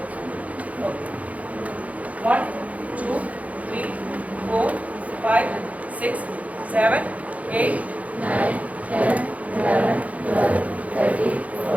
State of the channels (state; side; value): late; left; 0.069 ms